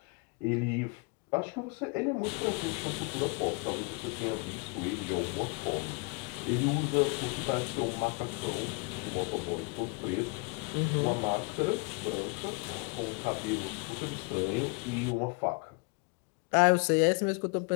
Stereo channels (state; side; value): quieter; right; 31.8 dB